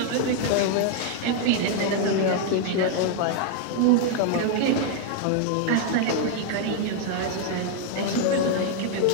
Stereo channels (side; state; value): both; different; correlation 0.00